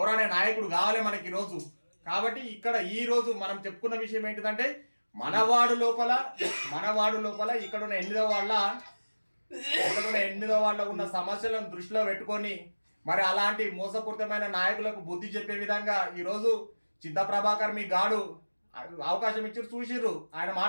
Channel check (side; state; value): both; inverted; correlation -1.00